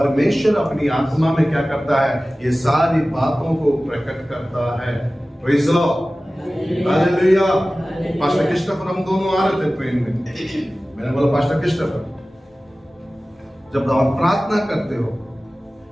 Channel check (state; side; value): normal; both; correlation 0.97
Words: अपनी आत्मा में क्या करता है? ये सारी बातों को प्रकट करता है। Praise the Lord, hallelujah. Pastor Christopher, हम दोनों आ रहे थे ट्रेन में। मैंने बोला, पास्टर क्रिस्टोफर, जब आप प्रार्थना करते हो